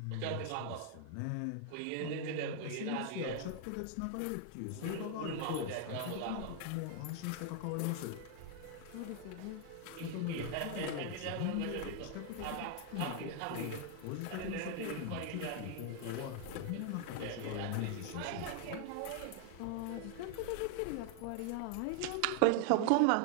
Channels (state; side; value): different; both; correlation 0.00